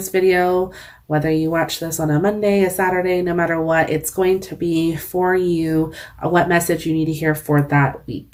video, whether you watch this on a Monday, a Saturday, no matter what, it's going to be for you what message you need to hear for that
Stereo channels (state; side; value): identical; both; correlation 1.00